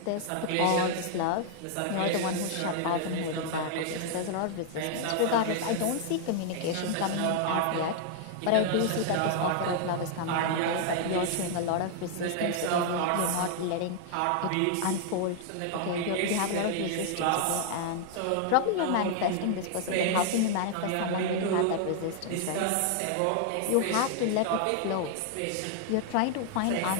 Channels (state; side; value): different; both; correlation -0.01